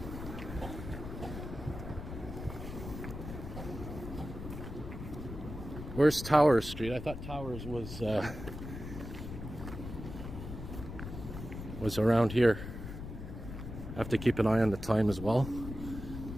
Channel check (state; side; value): noise; left; rumble, 9 dB below the sound